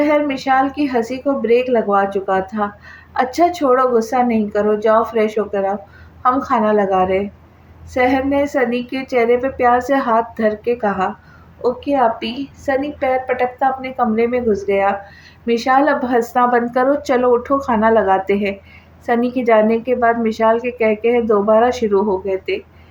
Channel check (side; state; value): both; identical; correlation 1.00